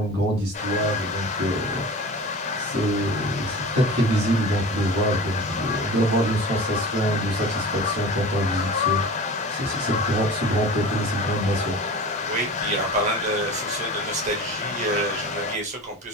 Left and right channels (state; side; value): normal; both; correlation 0.35